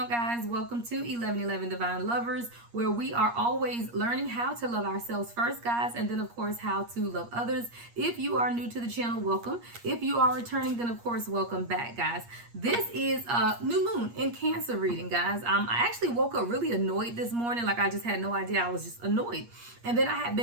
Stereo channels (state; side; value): late; left; 8.5 ms